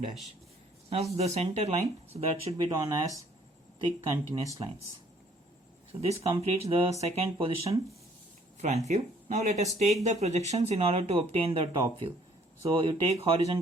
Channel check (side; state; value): both; normal; correlation 0.60